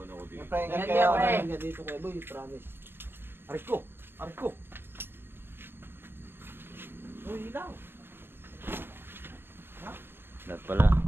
ako dito. Magpahinga Ingat kayo. kayo, pre. Magpahinga dito kayo, boy. Promise. Aray ko! Aray ko! Uy, ilaw! Lahat pala.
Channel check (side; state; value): left; late; 0.10 ms